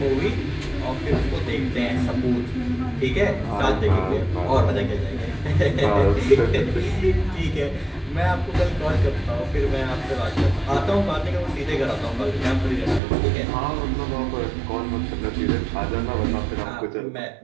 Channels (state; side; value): drops out; left; at 13.0 s